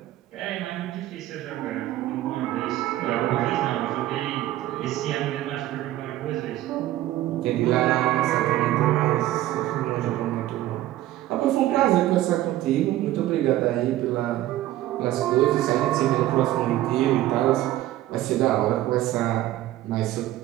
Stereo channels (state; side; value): quieter; left; 14.7 dB